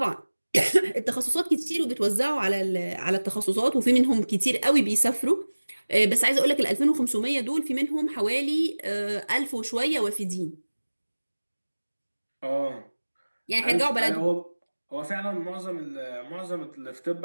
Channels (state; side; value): inverted; both; correlation -1.00